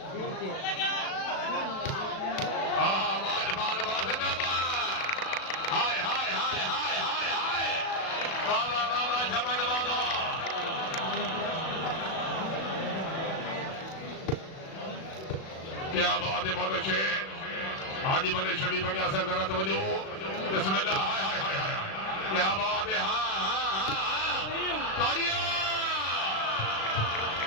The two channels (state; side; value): late; right; 37 ms